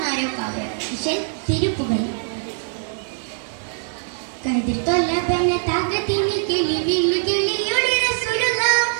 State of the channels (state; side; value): silent; left; digital silence